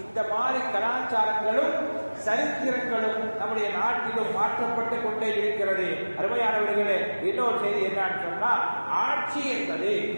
இந்த மாதிரி கலாச்சாரங்களும் சரித்திரங்களும் நம்முடைய நாட்டிலும் மாற்றப்பட்டு கொண்டே இருக்கிறது. அருமையானவர்களே, இன்னொரு செய்தி என்னன்னு சொன்னா, ஆட்சி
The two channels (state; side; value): inverted; both; correlation -1.00